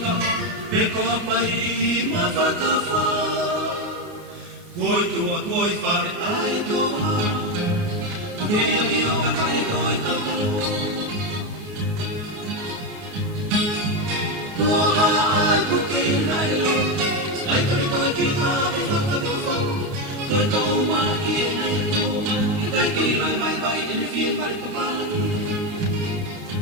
peko apai ma whakawha. Koi tua, koi whare ai toa. Kei aki o ka kai koi taukalo. Kua ai puke i naile, ai kare koi ki hape whakatawhau. Koi tau maa ki e nei tōma, i kai kei lai vai vai e ne whie mare papalani.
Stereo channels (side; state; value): left; late; 29 ms